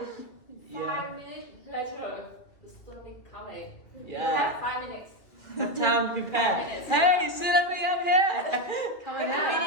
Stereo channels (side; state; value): right; late; 2.3 ms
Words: Yeah. 5 minutes later, the tsunami coming. Yeah. You have 5 minutes. Have time to prepare. Hey, Tsunami, I'm here. Come on here.